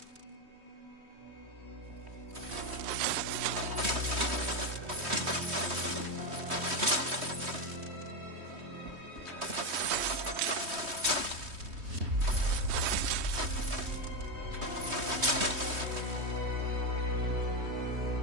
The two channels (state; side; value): late; left; 3.2 ms